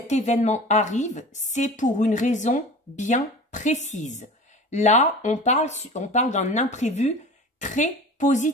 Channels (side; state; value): both; normal; correlation 0.37